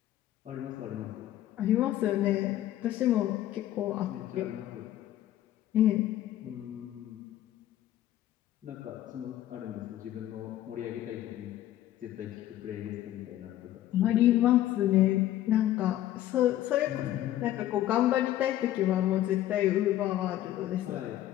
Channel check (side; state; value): right; quieter; 13.4 dB